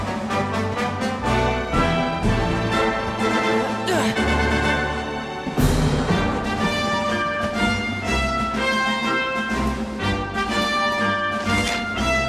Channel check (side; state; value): both; identical; correlation 1.00